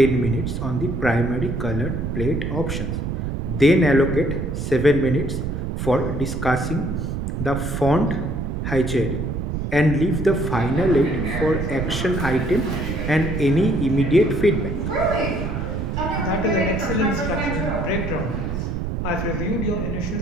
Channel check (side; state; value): right; noise; rumble, 3 dB below the sound